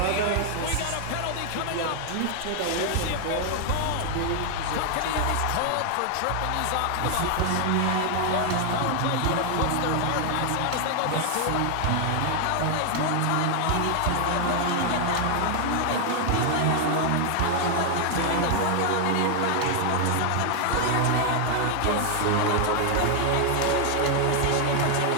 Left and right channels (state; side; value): different; both; correlation 0.00